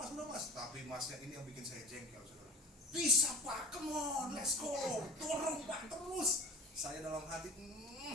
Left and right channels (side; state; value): both; normal; correlation 0.40